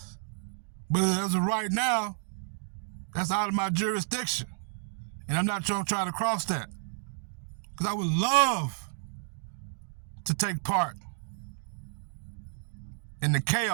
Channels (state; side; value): silent; left; digital silence